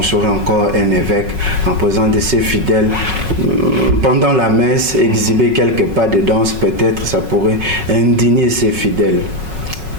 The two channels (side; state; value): left; late; 5.4 ms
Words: encore un évêque, en présence de ses fidèles. Pendant la messe, exhiber quelques pas de danse, peut-être, ça pourrait indigner ses fidèles.